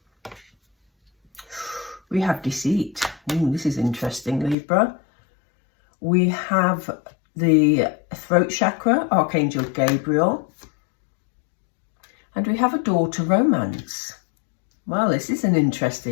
We have deceit. Ooh, this is interesting, Libra. We have the throat chakra, Archangel Gabriel. And we have a door to romance. Well, this is an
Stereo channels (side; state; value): right; drops out; at 4.5 s